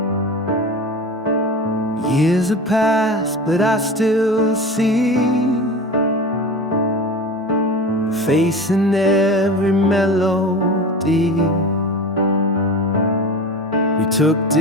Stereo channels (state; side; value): normal; both; correlation 0.32